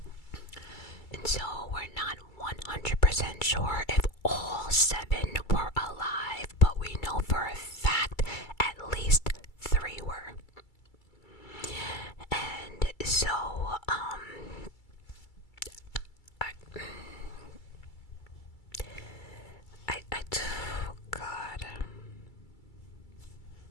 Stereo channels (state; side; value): late; right; 2.3 ms